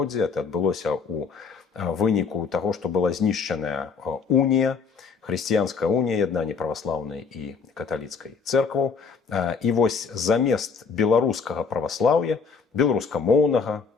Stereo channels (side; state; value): right; quieter; 5.5 dB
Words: Это адбылося ў выніку таго, што была знішчаная унія, хрысціянская унія, яднанне праваслаўнай і каталіцкай цэркваў. І вось замест беларускага праваслаўя, беларускамоўнага,